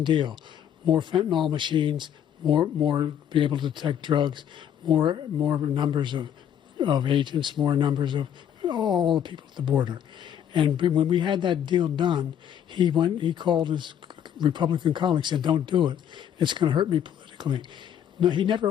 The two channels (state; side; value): quieter; right; 9.5 dB